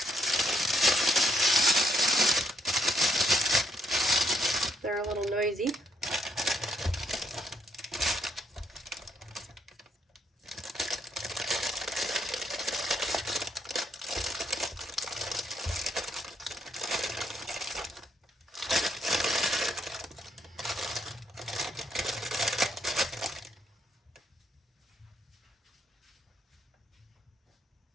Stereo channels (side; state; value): both; normal; correlation 0.74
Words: They're a little noisy.